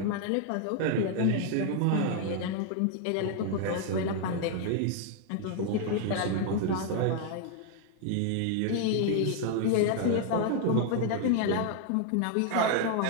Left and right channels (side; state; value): both; different; correlation 0.00